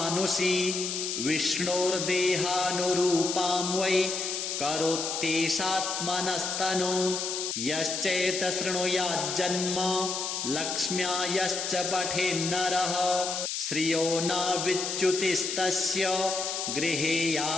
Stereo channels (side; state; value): left; noise; hiss, 3 dB below the sound